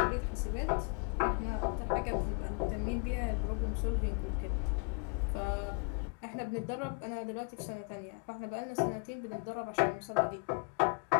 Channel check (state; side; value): quieter; right; 34.2 dB